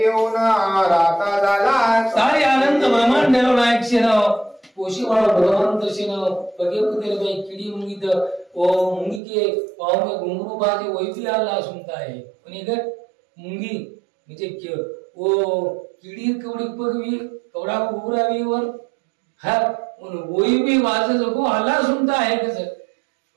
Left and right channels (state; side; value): drops out; left; at 9.2 s